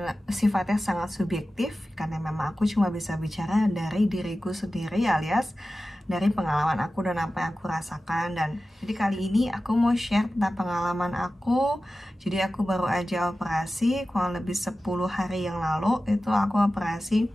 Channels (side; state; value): both; normal; correlation 0.95